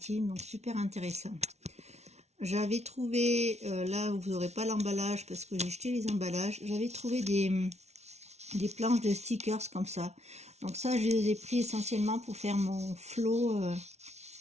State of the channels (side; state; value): left; late; 0.32 ms